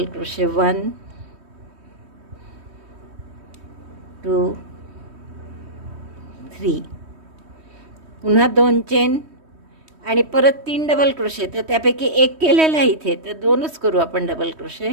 क्रोशे 1 2 3, पुन्हा 2 चेन आणि परत 3 डबल क्रोशे. तर त्यापैकी एक केलेला आहे इथे, तर 2च करू आपण double crochet.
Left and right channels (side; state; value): left; late; 3.2 ms